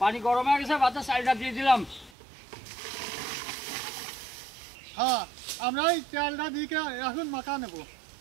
গরম হয়ে গেছে ভাতের চালটা দিয়ে দিলাম হ্যাঁ আমরা এই চালটা দিয়ে এখন মাখা নেবো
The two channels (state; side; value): drops out; left; at 2.1 s